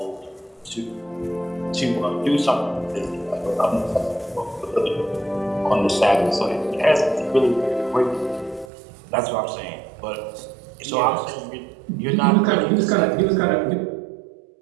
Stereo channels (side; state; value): left; drops out; at 8.7 s